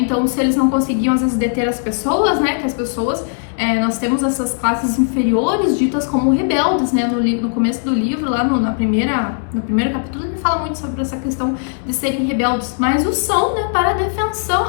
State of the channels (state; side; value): silent; right; digital silence